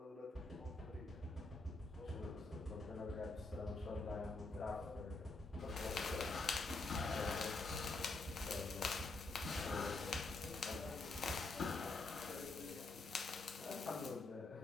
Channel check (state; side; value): quieter; right; 3.4 dB